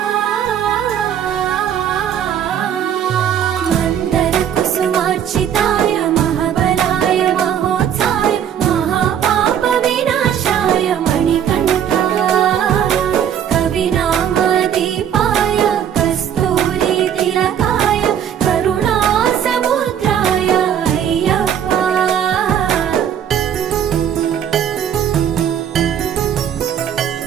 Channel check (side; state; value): left; quieter; 9.3 dB